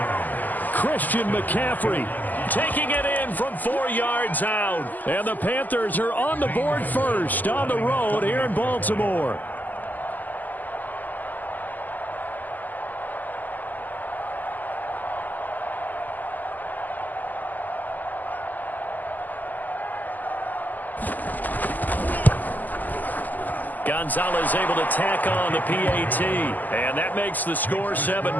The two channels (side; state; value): right; late; 0.083 ms